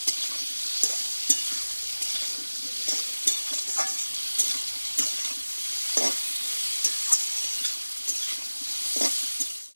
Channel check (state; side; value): inverted; both; correlation -1.00